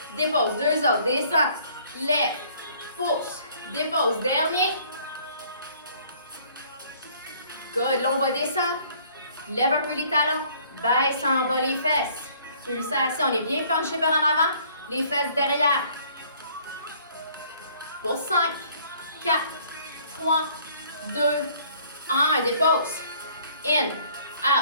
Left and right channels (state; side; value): inverted; both; correlation -0.58